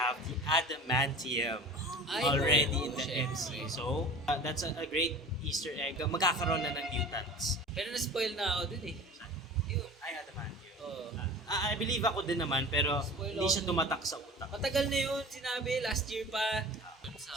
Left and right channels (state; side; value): normal; both; correlation 0.38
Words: the adamantium already in the syempre. MCU. So, that's a great Easter egg. Magkakaroon na ng mutants. Pero na-spoil na ako dun Yun. Ay, adamantium. Oo. I believe ako din naman, pero hindi siya tumatak sa utak. Matagal na yun, sinabi, last year pa.